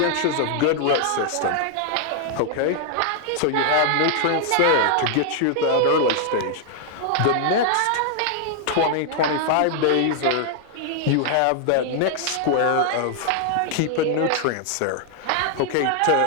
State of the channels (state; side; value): different; both; correlation 0.00